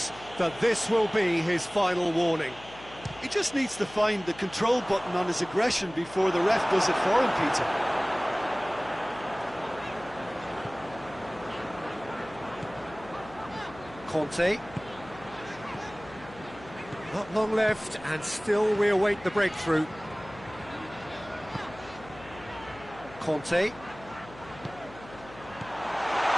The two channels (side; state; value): left; noise; hum, 18 dB below the sound